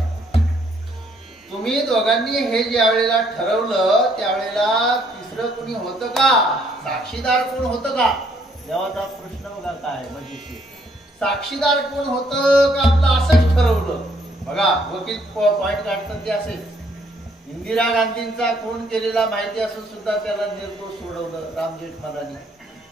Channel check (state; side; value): normal; both; correlation 0.67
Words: तुम्ही दोघांनी हे ज्या वेळेला ठरवलं त्यावेळेला तिसरं कुणी होतं का? साक्षीदार कोण होतं का? देवाचा प्रश्न बघा काय म्हणजे साक्षीदार कोण होतं का? आपलं असंच ठरवलं. बघा वकील पॉइंट काढतात ते असेच. इंदिरा गांधींचा खून केलेला माहिती असून सुद्धा त्याला निर्दोष सोडवलं राम जेठमलानी.